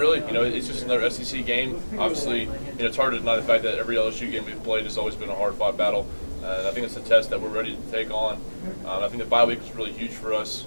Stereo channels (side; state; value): both; inverted; correlation -1.00